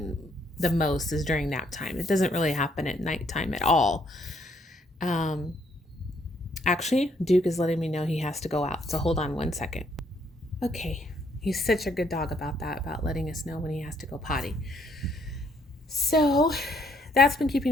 the most, is during nap time. It doesn't really happen at nighttime at all. Actually, Duke is letting me know he has to go out, so hold on one second. Okay, he's such a good dog about that, about letting us know when he has to go potty. So that's been keeping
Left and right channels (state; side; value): normal; both; correlation 0.69